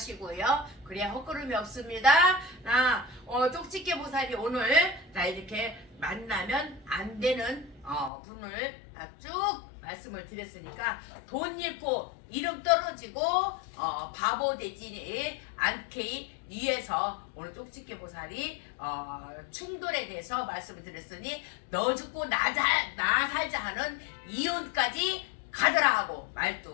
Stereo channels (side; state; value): right; drops out; at 8.1 s